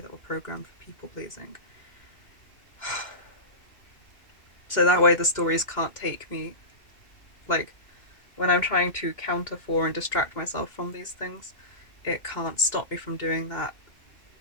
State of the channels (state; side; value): late; right; 2.1 ms